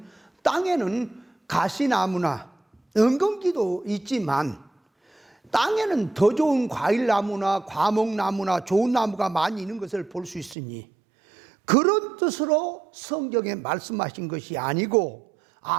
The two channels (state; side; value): drops out; left; at 10.6 s